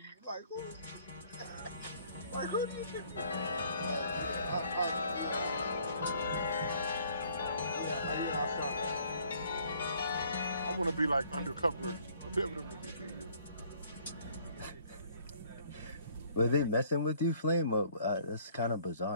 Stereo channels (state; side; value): inverted; both; correlation -0.60